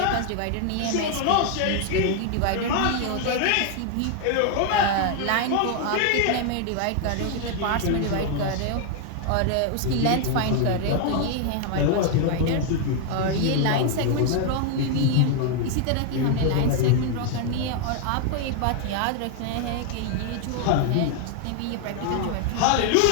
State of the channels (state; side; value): different; both; correlation 0.00